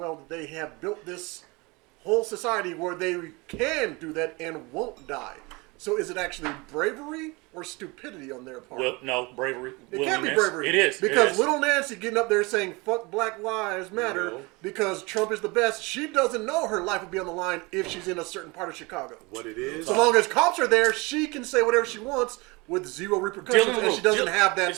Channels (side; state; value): left; quieter; 25.6 dB